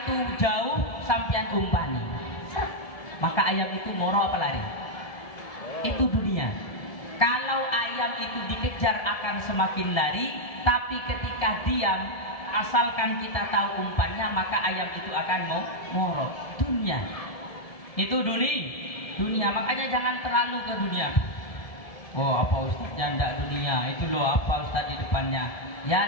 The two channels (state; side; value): late; right; 1.7 ms